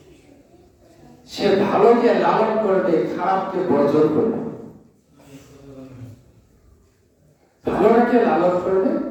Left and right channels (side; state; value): both; identical; correlation 1.00